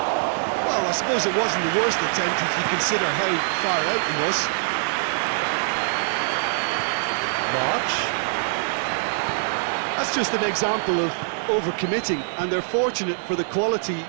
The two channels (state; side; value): silent; left; digital silence